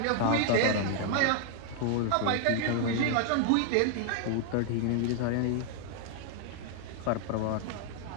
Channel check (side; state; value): both; different; correlation 0.00